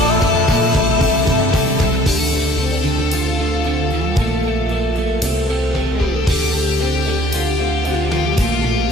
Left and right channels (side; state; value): both; normal; correlation 0.56